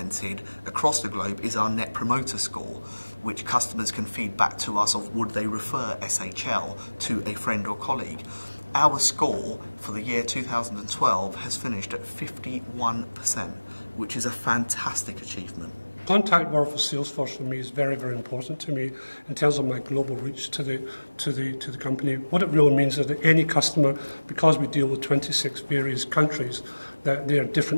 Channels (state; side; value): inverted; both; correlation -1.00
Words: across the globe is our Net Promoter Score, which customers can feed back to us of would they refer SHL to a friend or colleague. Our score for the year 2012 has finished at 51%, which is a fantastic achievement. Contact word for Salesforce for me is very, very important to me in terms of my global reach to the company. What it really means is that any customer, because we deal with 26 various countries, that they are